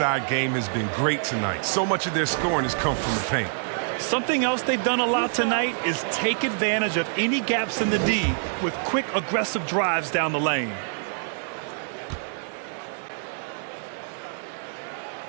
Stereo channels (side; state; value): left; silent; 61 dB below the other